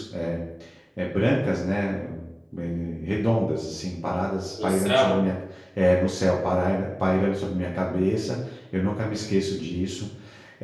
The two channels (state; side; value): identical; both; correlation 1.00